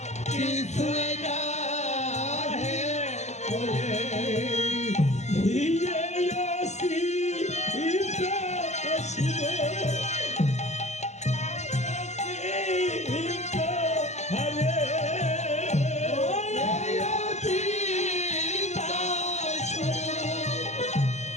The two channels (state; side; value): late; right; 0.33 ms